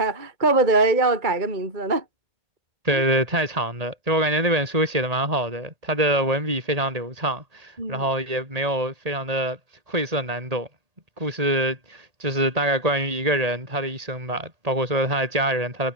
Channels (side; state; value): left; late; 1.8 ms